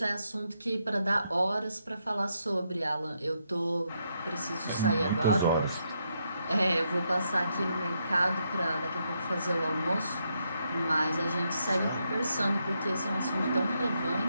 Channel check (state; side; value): inverted; both; correlation -0.79